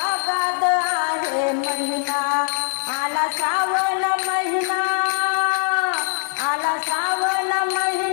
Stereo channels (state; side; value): silent; right; digital silence